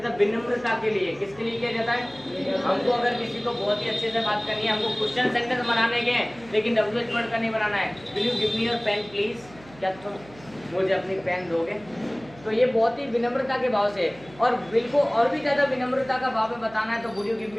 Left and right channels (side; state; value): right; noise; hum, 22 dB below the sound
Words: है? विनम्रता के लिए। किसके लिए किया जाता है? हमको अगर किसी को बहुत ही अच्छे से बात करनी है, हमको क्वेश्चन सेंटेंस बनाने के हैं, लेकिन WH वर्ड का नहीं बनाना है। Will you give me your pen please, क्या तुम मुझे अपनी पेन दोगे? तो ये बहुत ही विनम्रता के भाव से, और बिल को और भी ज़्यादा विनम्रता का भाव में बताना है, तो would you give